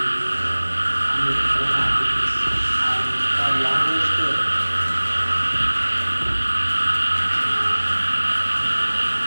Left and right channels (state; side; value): inverted; both; correlation -1.00